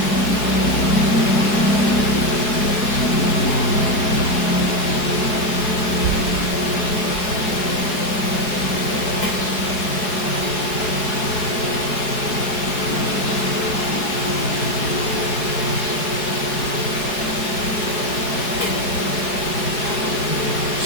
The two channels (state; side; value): late; right; 4.7 ms